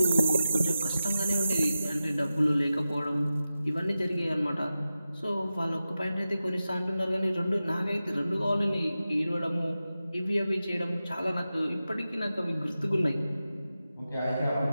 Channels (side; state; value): both; inverted; correlation -0.93